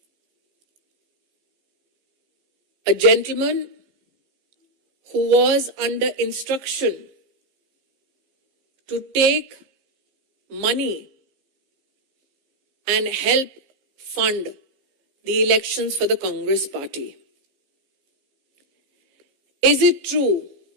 A gentleman who was under instruction to take money and help fund the elections for the Congress party. Is it true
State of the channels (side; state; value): left; late; 15 ms